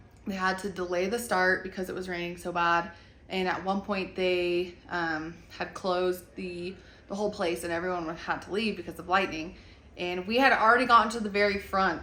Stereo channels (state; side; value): identical; both; correlation 1.00